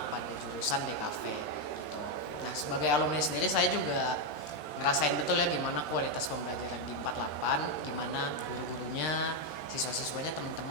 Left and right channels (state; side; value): late; right; 13 ms